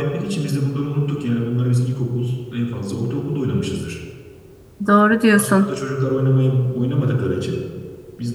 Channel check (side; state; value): both; identical; correlation 1.00